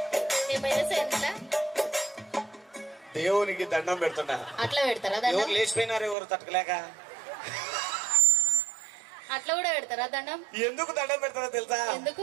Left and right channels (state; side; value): drops out; left; at 6.2 s